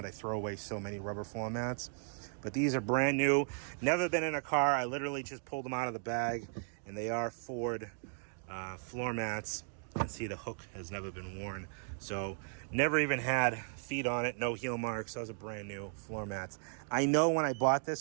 I throw away so many rubber floor mats. But these are brand new. Never been in a car. I literally just pulled them out of the bag. And they are Ford floor mats. You can see the hook has never been worn. So never even had feet on it. No heel marks. Those are brand new floor mats. I know when I bought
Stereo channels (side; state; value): left; silent; 54 dB below the other